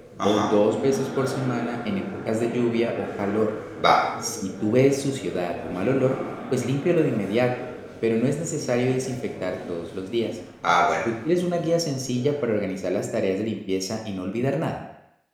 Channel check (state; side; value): identical; both; correlation 1.00